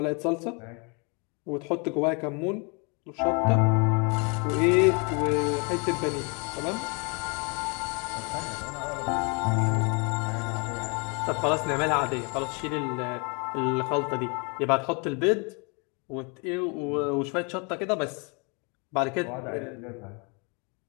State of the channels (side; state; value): right; quieter; 33.0 dB